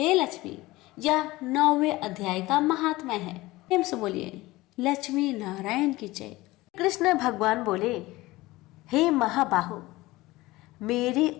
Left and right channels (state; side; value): quieter; right; 19.4 dB